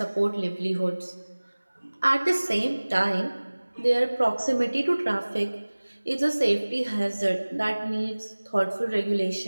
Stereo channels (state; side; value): inverted; both; correlation -1.00